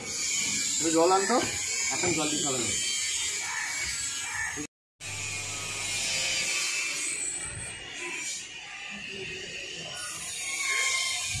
জল আনতো এখন জল দিতে হবে না।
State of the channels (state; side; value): identical; both; correlation 1.00